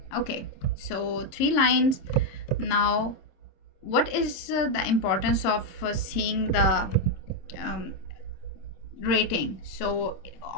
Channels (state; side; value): late; right; 26 ms